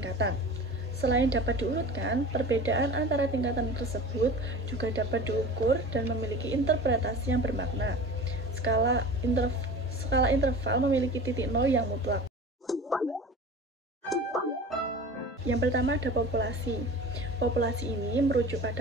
Selain dapat diurutkan, perbedaan antara tingkatan tersebut juga dapat diukur dan memiliki interpretasi yang bermakna. Skala interval memiliki titik nol yang mutlak. Yang pertama ada populasi. Populasi ini merujuk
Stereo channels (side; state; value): both; normal; correlation 0.37